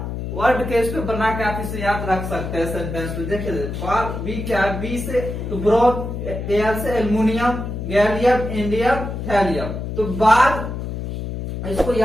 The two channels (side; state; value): left; noise; hum, 5 dB below the sound